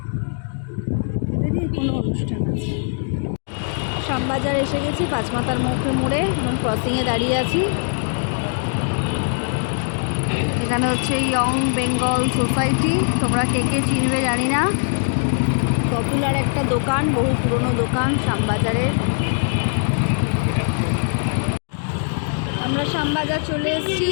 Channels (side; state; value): right; silent; digital silence